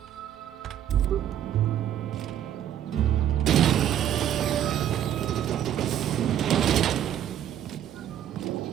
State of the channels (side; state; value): left; quieter; 10.5 dB